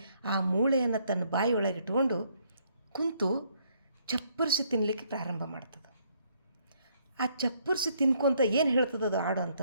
ಆ ಮೂಳೆಯನ್ನು ತನ್ನ ಬಾಯಿಯೊಳಗೆ ಇಟ್ಕೊಂಡು ಕುಂತು ಚಪ್ಪರಿಸಿ ತಿನ್ನಲಿಕ್ಕೆ ಪ್ರಾರಂಭ ಮಾಡ್ತದೆ. ಆ ಚಪ್ಪರಿಸಿ ತಿನ್ಕೊಂತ ಏನು ಹೇಳ್ತದೆ ಅದು ಆಡು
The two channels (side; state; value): both; inverted; correlation -0.69